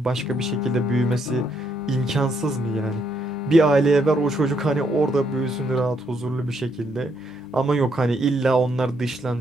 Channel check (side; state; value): both; normal; correlation 0.74